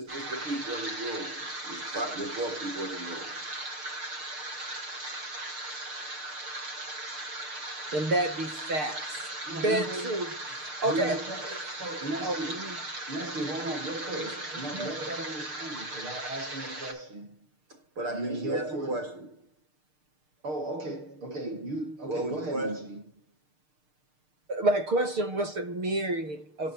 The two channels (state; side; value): late; left; 6.6 ms